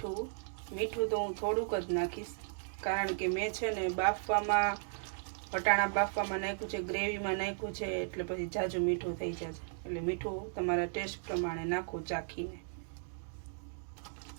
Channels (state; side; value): silent; left; digital silence